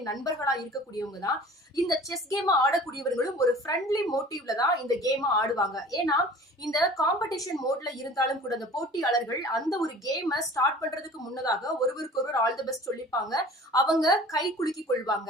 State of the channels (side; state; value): both; normal; correlation 0.45